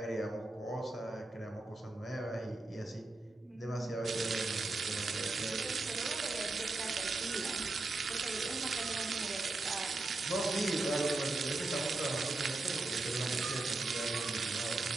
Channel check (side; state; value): left; quieter; 3.2 dB